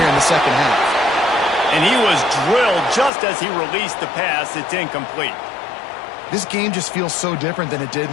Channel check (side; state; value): right; drops out; at 3.1 s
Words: in the second half. And he was drilled just as he released the pass. It's incomplete. This game just feels so different than it did in